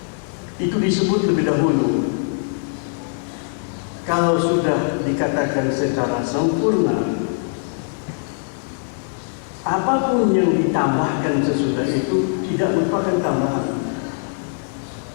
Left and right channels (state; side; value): silent; right; 62 dB below the other